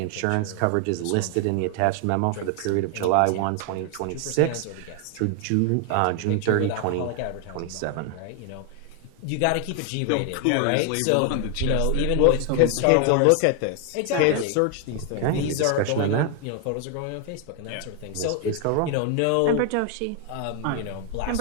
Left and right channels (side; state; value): both; different; correlation 0.00